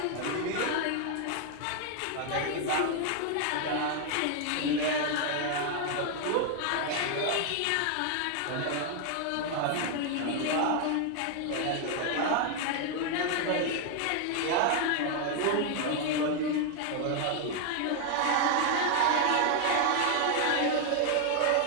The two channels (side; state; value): both; different; correlation 0.00